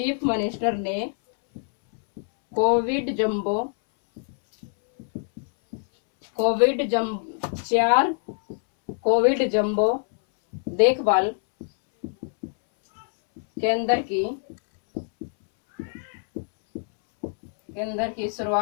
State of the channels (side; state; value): right; silent; 62 dB below the other